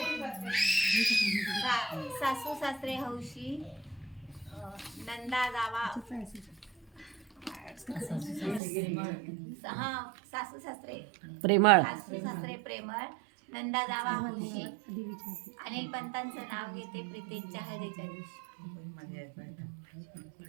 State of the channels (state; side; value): drops out; left; at 8.6 s